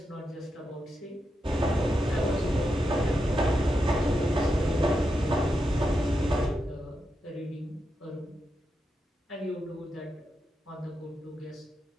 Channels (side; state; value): both; normal; correlation 0.86